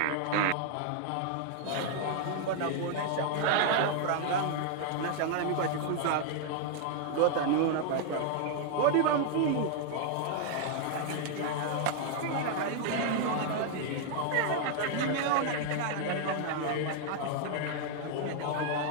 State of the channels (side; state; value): both; different; correlation 0.00